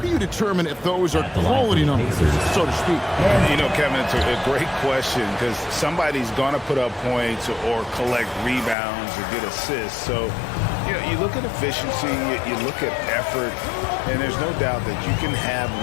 you determine if those are quality numbers, so to speak? You know, Kevin, it's a great question because somebody's going to put up points or collect rebounds or get assists. So, you know, you look at efficiency, you look at effort, and there's no doubt that you can have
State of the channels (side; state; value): right; drops out; at 8.8 s